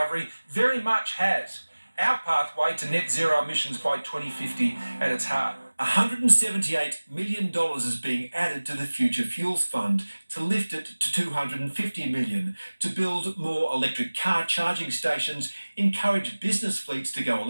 very much has our pathway to net zero emissions by 2050 at its heart. $178 million is being added to the Future Fuels Fund to lift it to $250 million to build more electric car charging stations, encourage business fleets to go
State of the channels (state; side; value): inverted; both; correlation -1.00